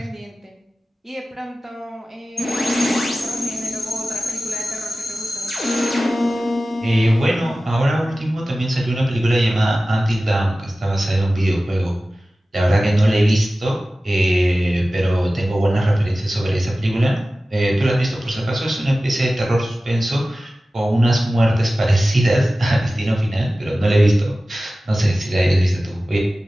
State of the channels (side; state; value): both; normal; correlation 0.96